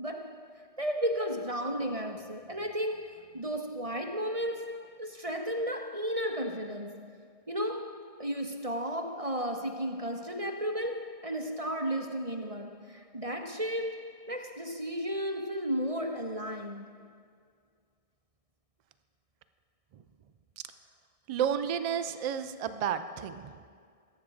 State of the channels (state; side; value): late; left; 1.6 ms